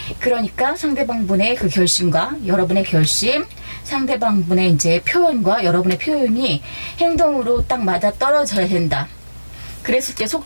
그러니까 상대방분의 그 결심과 여러분의 결심, 상대방분의 이제 표현과 여러분의 표현이 행동으로 딱 맞아 떨어져야 된다. 그랬을 때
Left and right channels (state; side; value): inverted; both; correlation -1.00